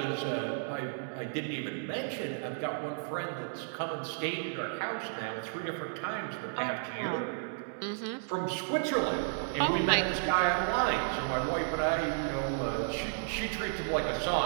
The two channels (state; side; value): silent; left; digital silence